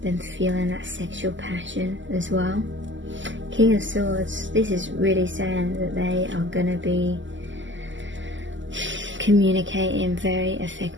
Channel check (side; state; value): left; late; 0.54 ms